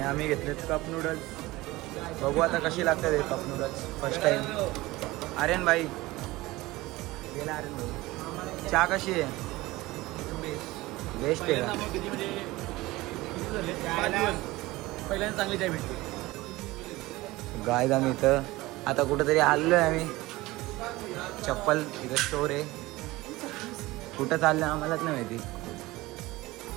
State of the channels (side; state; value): left; quieter; 19.6 dB